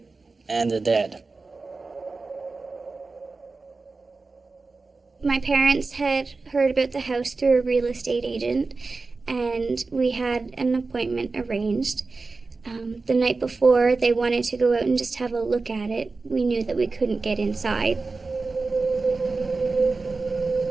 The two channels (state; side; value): quieter; left; 3.9 dB